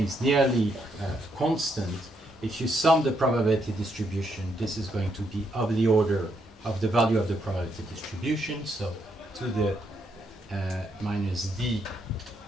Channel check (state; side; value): normal; both; correlation 0.76